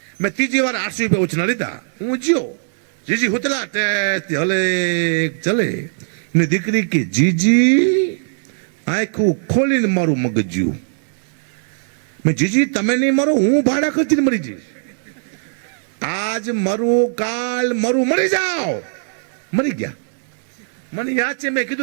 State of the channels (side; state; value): left; silent; digital silence